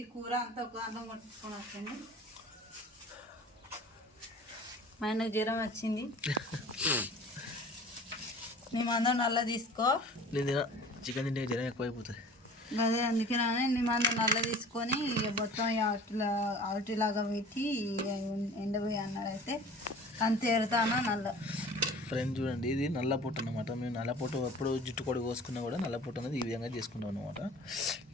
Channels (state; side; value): normal; both; correlation 0.44